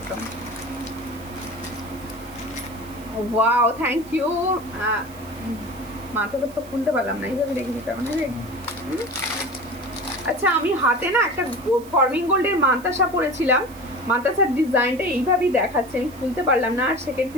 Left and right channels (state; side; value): noise; right; hiss, 22 dB below the sound